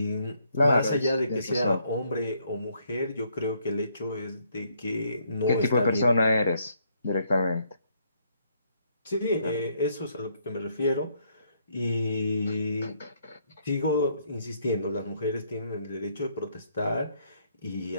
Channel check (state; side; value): inverted; both; correlation -0.71